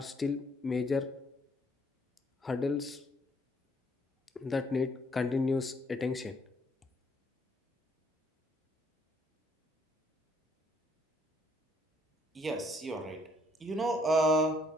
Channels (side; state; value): both; normal; correlation 0.68